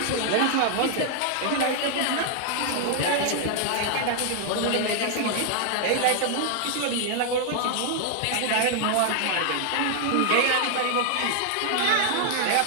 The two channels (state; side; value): different; both; correlation 0.00